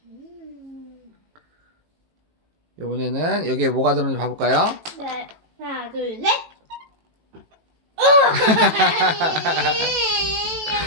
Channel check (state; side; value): late; left; 18 ms